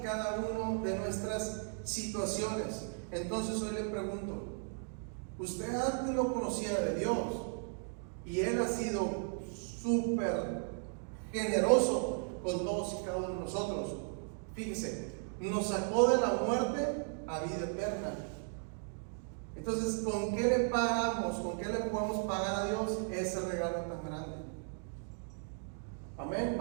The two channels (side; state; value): left; silent; 54 dB below the other